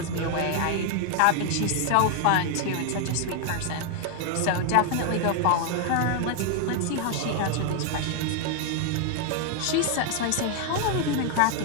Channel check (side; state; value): both; different; correlation 0.00